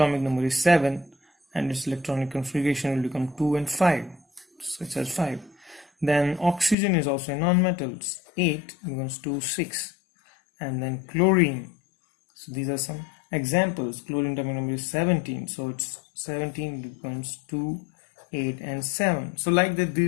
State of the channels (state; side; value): drops out; right; at 6.8 s